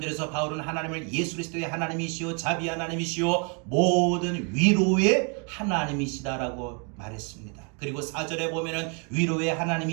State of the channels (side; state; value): left; quieter; 36.5 dB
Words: 바울은 하나님을 예수 그리스도의 하나님이시오, 자비 하나님이시오, 모든 위로의 하나님이시다라고 말했습니다. 그리고 4절에 보면은 위로의